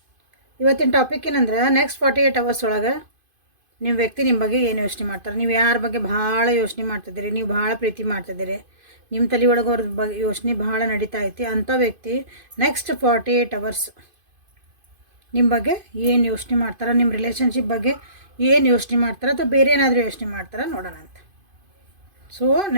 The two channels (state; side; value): late; left; 2.5 ms